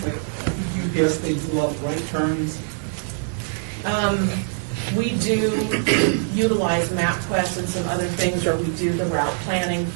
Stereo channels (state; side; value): silent; left; digital silence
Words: Like, I think UPS, they do a lot of right turns. We do utilize MapQuest and some other things, or we do the route planning